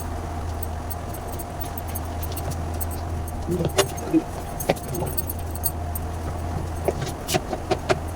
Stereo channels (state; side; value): identical; both; correlation 1.00